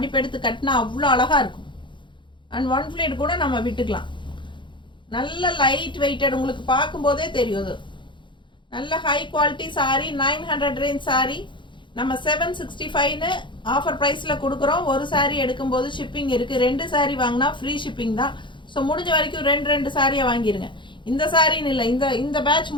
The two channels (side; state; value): right; late; 0.23 ms